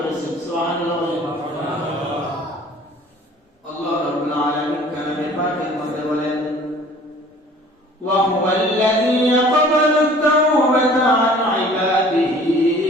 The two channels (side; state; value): both; normal; correlation 0.50